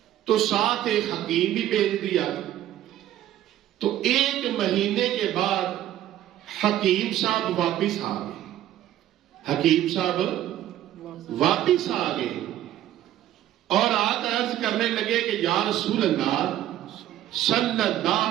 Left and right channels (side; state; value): left; quieter; 12.7 dB